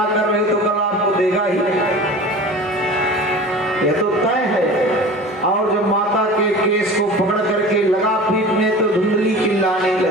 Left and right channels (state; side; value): normal; both; correlation 0.37